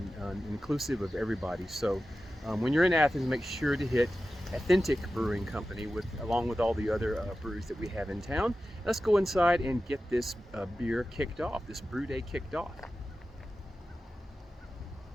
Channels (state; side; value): normal; both; correlation 0.94